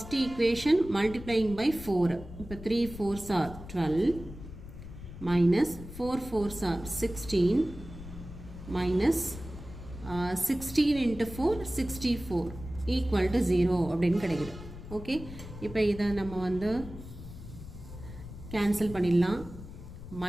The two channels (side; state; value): left; noise; rumble, 13 dB below the sound